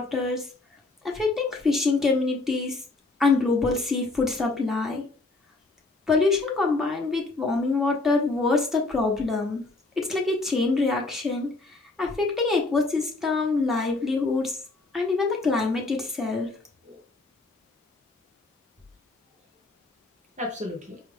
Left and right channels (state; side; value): quieter; right; 3.3 dB